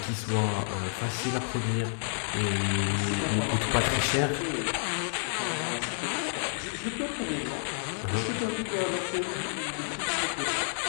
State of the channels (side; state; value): right; silent; digital silence